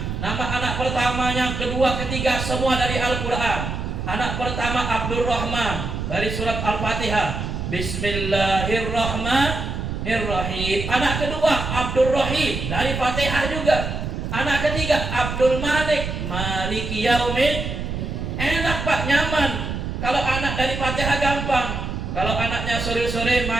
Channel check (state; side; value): noise; right; rumble, 4 dB below the sound